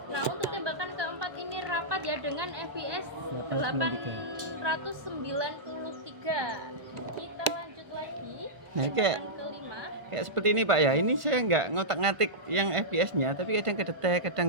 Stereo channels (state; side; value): late; left; 1.5 ms